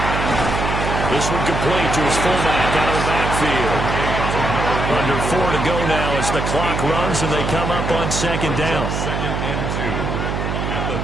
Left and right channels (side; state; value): right; noise; hum, 2 dB below the sound